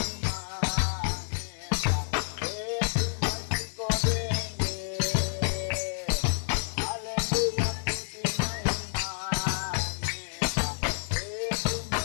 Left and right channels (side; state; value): right; silent; digital silence